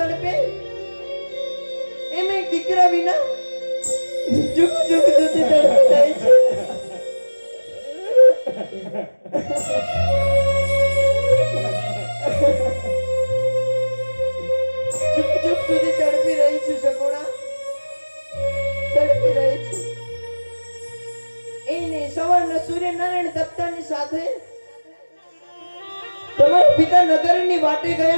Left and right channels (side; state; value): both; inverted; correlation -1.00